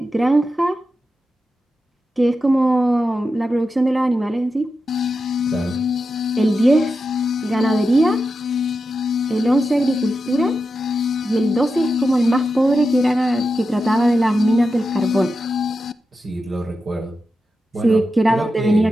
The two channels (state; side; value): normal; both; correlation 0.90